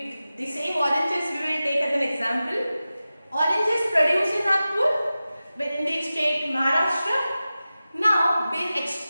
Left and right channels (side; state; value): both; inverted; correlation -0.95